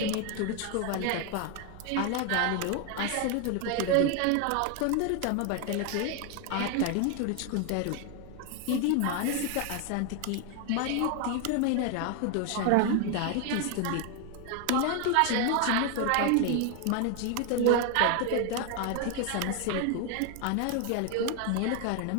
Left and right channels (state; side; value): different; both; correlation 0.01